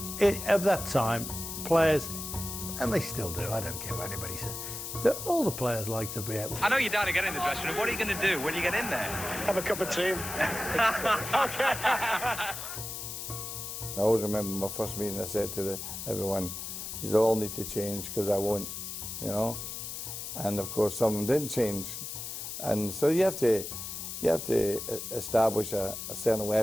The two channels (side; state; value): left; noise; hiss, 7 dB below the sound